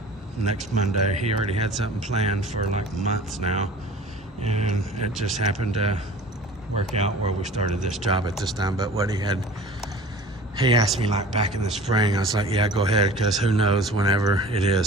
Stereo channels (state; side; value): normal; both; correlation 0.43